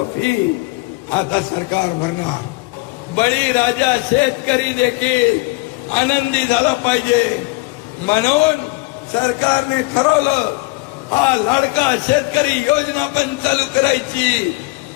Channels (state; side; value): quieter; right; 24.1 dB